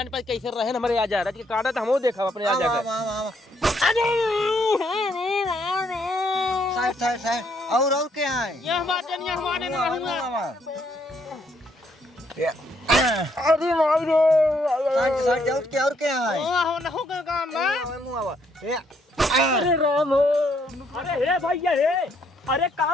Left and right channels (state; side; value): normal; both; correlation 0.71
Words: पाए कैसे रहे हमारे आजा रज के काटा तो हमो देखा अपने आजा के साइड और क्या है यह बात नहीं हमारे में रहूंगा अरे भाई रे साइड और क्या है हो ना हो काम ना अरे राम अरे हे भैया हे अरे